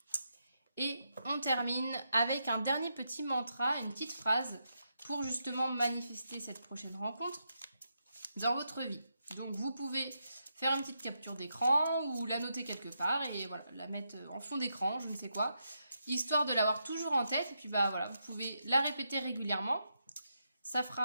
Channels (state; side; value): inverted; both; correlation -0.83